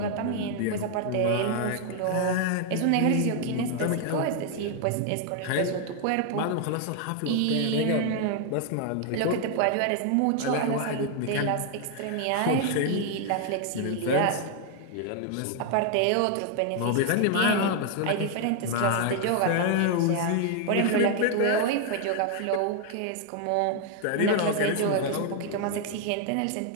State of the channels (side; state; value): both; different; correlation 0.00